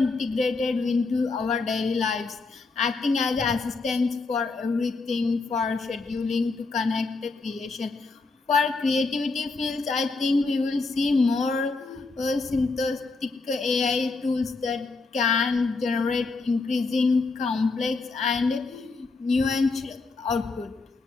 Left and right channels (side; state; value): right; quieter; 3.9 dB